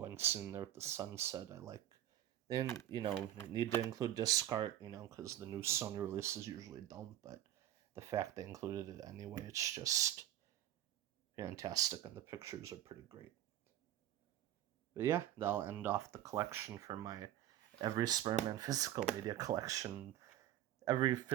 sitting there with the sunset. I like. And, need to include disc art, because the new Sony releases usually don't, but the fact they included it anyway, it's just fantastic, and the pictures are pretty great. But yeah, that'll end off the collection for my every Spider-Man physical media collection, every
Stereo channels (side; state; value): left; quieter; 12.2 dB